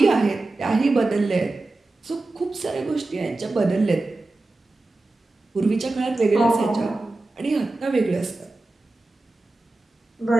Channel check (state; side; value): quieter; left; 3.0 dB